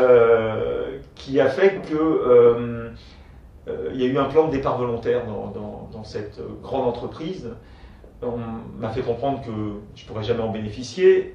qui a fait que il y a eu un plan de départ volontaire dans cette grande entreprise. On m'a fait comprendre que je ne pourrais jamais en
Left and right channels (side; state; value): both; identical; correlation 1.00